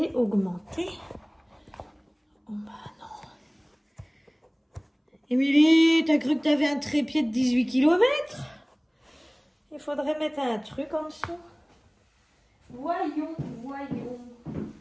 augmenter? Oh bah non. Émilie, t'as cru que t'avais un trépied de 18 km? Il faudrait mettre un truc en dessous. Voyons, voyons.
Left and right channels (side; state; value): both; identical; correlation 1.00